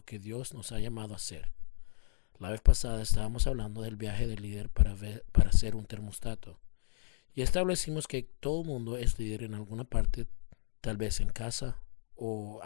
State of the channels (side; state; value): right; silent; 55 dB below the other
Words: que Dios nos ha llamado a ser. La vez pasada estábamos hablando del viaje del líder para ser un termostato. Y establecimos que todo el mundo es líder en alguna parte, tal vez en casa o